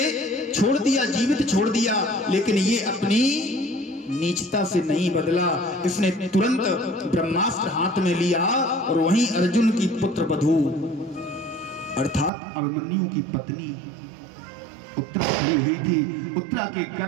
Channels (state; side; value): drops out; left; at 12.3 s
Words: छोड़ दिया, जीवित छोड़ दिया, लेकिन ये अपनी नीचता से नहीं बदला। इसने तुरंत ब्रह्मास्त्र हाथ में लिया और वहीं अर्जुन की पुत्र वधू अर्थात अभिमन्यु की पत्नी उत्तरा खड़ी हुई थी। उत्तरा के